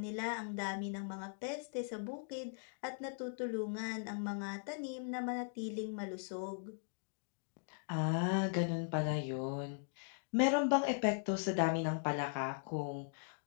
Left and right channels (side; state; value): right; silent; digital silence